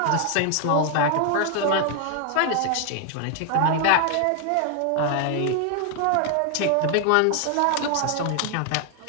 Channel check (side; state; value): both; different; correlation 0.00